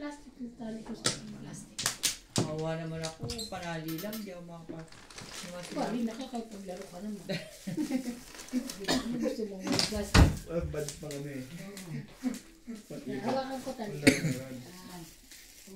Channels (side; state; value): both; identical; correlation 1.00